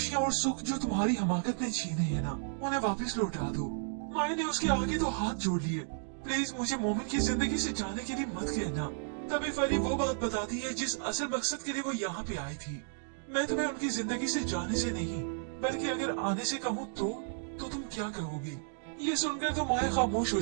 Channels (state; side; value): silent; left; digital silence